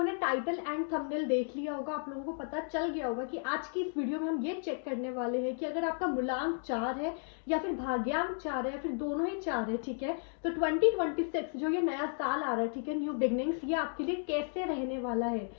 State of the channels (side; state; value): right; silent; 55 dB below the other